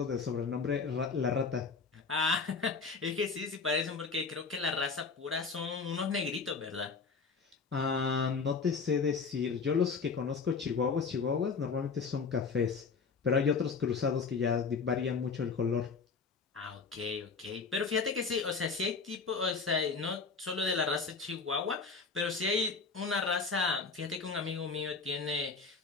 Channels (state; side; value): quieter; right; 4.9 dB